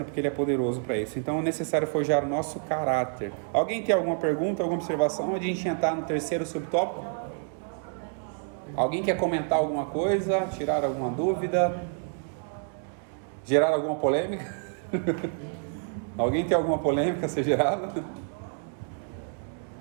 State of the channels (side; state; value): left; silent; 59 dB below the other